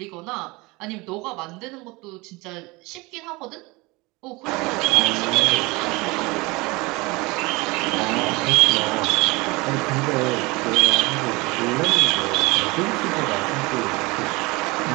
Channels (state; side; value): quieter; left; 24.0 dB